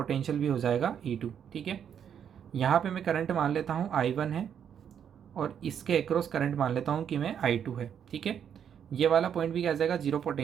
भी हो जाएगा E2। ठीक है, यहाँ पे मैं करंट मान लेता हूँ I1 है और इसके अक्रॉस करंट मान लेता हूँ कि मैं I2 है। ठीक है, ये वाला पॉइंट भी क्या आ जाएगा, जीरो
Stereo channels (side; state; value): left; quieter; 8.5 dB